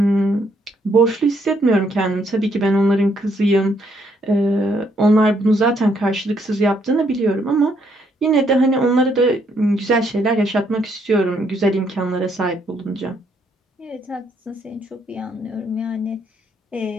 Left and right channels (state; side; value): normal; both; correlation 0.71